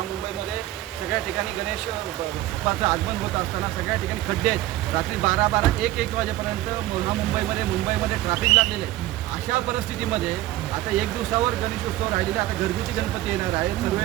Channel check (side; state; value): left; quieter; 15.7 dB